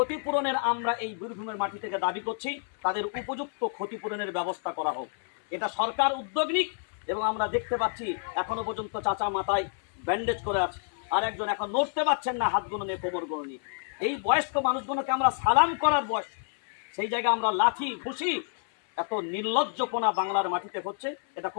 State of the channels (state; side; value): silent; right; 59 dB below the other